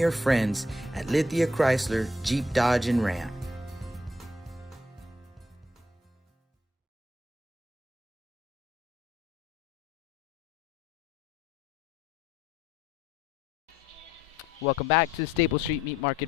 friends at Lithia Chrysler Jeep Dodge and Ram. Welcome back to the Staple Street Meat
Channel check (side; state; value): both; normal; correlation 0.70